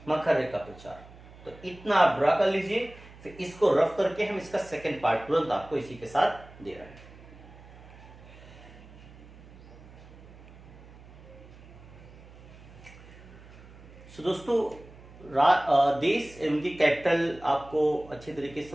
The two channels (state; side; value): noise; right; hum, 20 dB below the sound